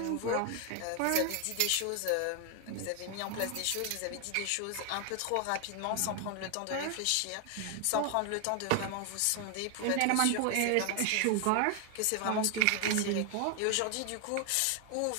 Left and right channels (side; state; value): both; different; correlation 0.01